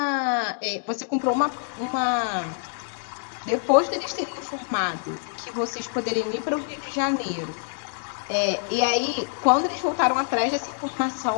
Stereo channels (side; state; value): right; silent; digital silence